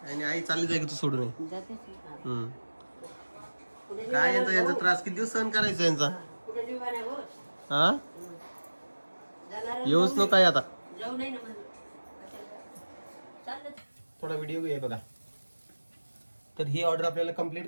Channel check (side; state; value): both; inverted; correlation -1.00